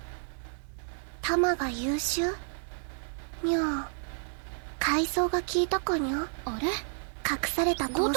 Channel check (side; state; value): left; silent; digital silence